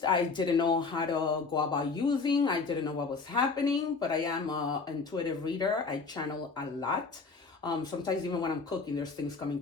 I didn't know how to go about using. I didn't know what was happening, but I am an intuitive reader. I channel a lot. Sometimes even when I'm cooking, there's things coming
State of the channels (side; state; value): right; quieter; 4.5 dB